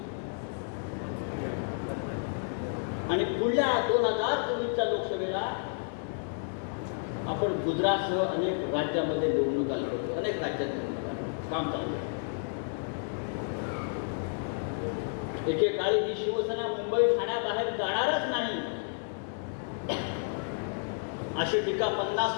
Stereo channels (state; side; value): silent; right; digital silence